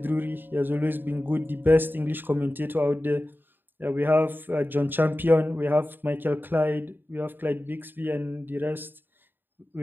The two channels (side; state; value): left; late; 0.094 ms